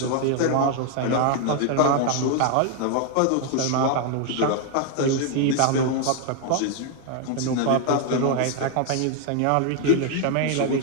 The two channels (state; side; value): different; both; correlation 0.00